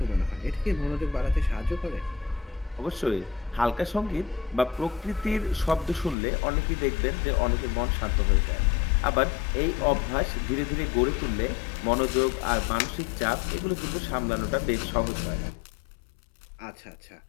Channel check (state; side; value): drops out; right; at 6.2 s